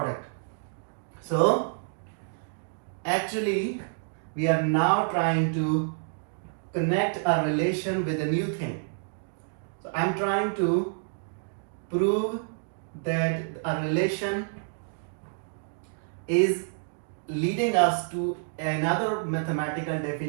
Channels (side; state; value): left; silent; digital silence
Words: So actually we are now trying to connect a relation with a new thing. So I'm trying to prove that a relation is leading us to another mathematical